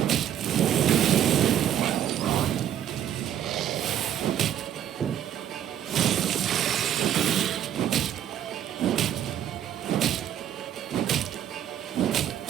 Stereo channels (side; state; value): left; quieter; 10.5 dB